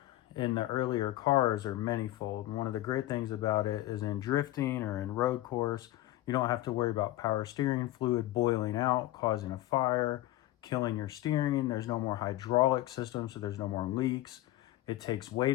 in the earlier cars are manyfold. And one of the great things about it is in drifting or in road course, you don't have to worry about power steering fluid boiling out, causing a fire, killing your steering. There's no more hydraulic system, so there's no more leaks. It takes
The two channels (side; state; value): right; quieter; 15.8 dB